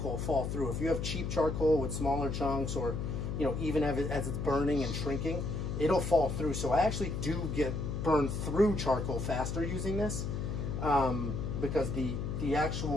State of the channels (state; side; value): noise; left; hum, 3 dB below the sound